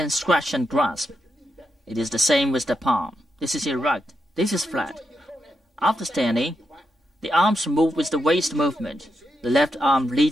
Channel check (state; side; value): normal; both; correlation 0.84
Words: scratch and grasp. It is the same with the palm. This is erect. This is flat. After standing, the arms move with the waist movement. The left arm